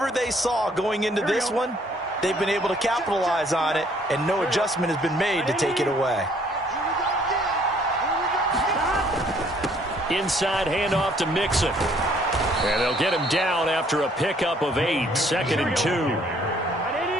they saw going into this one, they've been able to capitalize on it, and no adjustment has been made to take it away. Inside handoff to Mixon. And they'll get him down after a pickup of 8, 2nd and 2.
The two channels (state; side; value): normal; both; correlation 0.62